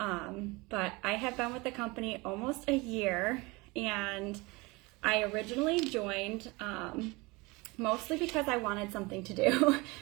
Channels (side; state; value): left; quieter; 24.5 dB